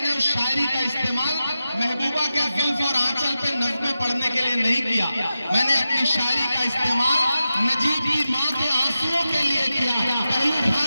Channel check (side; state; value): both; inverted; correlation -0.91